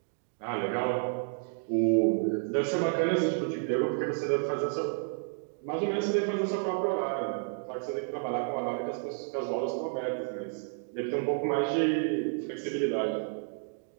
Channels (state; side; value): silent; left; digital silence